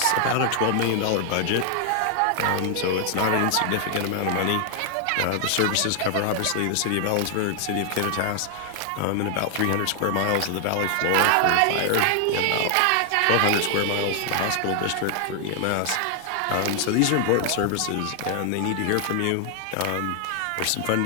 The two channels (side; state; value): both; different; correlation 0.00